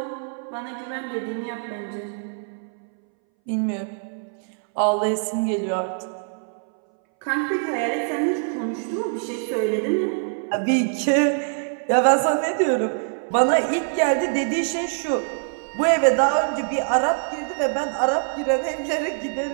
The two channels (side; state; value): left; silent; 61 dB below the other